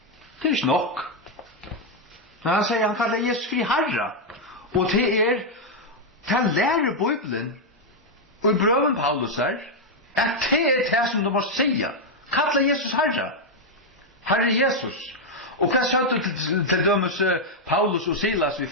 Det ikke nok. Men han sier, han kallar Jesus fri Herre. Og det lærer Bibelen og i brøven Paulus her at det som du må sige. Kalla Jesus Herre. Herre Jesus. Og hva sa du til dømes Paulus og Silas i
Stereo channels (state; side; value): normal; both; correlation 0.00